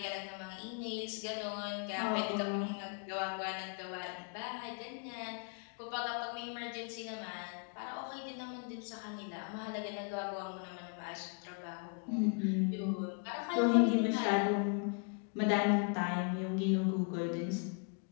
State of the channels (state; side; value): quieter; right; 38.5 dB